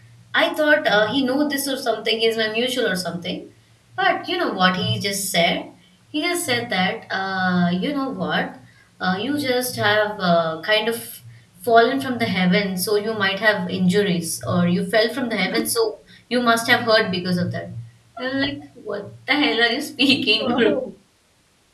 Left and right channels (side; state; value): both; identical; correlation 1.00